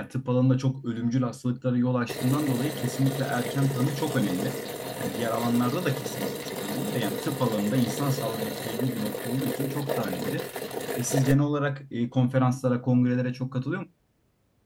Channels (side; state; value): both; identical; correlation 1.00